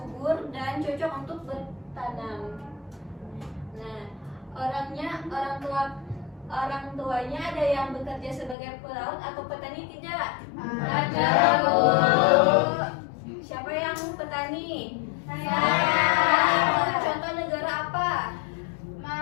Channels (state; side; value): drops out; right; at 8.6 s